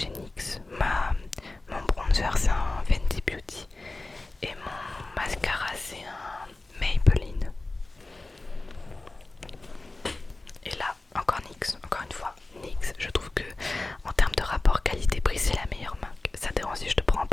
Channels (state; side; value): quieter; right; 3.1 dB